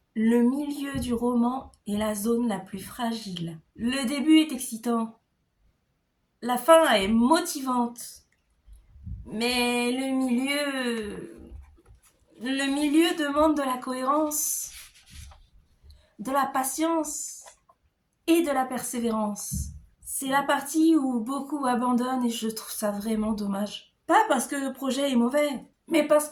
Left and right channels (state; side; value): identical; both; correlation 1.00